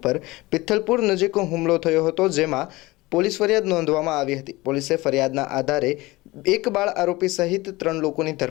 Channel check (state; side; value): quieter; right; 20.8 dB